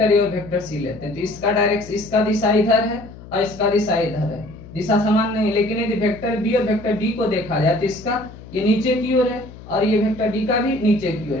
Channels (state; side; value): noise; left; hum, 17 dB below the sound